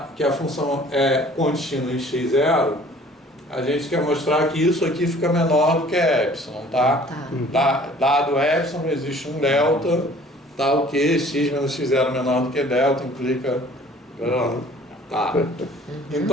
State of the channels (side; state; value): both; normal; correlation 0.52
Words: que a função é contínua em x0, a gente quer mostrar que isso aqui fica menor do que epsilon, tá? Dado epsilon, existe um delta, tá? O que x menos x0 menor do que delta implica... Tá.